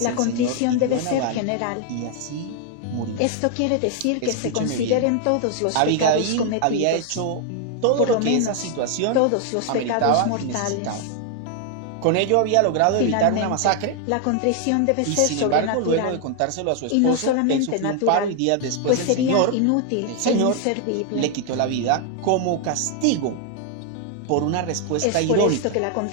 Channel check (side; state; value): both; different; correlation 0.00